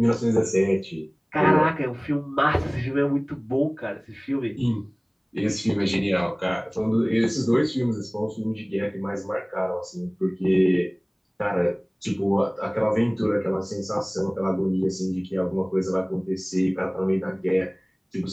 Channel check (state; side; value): identical; both; correlation 1.00